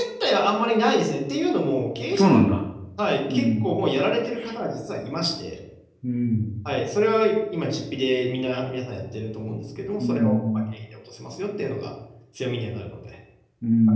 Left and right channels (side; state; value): both; identical; correlation 1.00